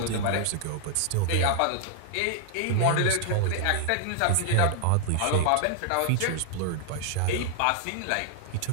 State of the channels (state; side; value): different; both; correlation 0.00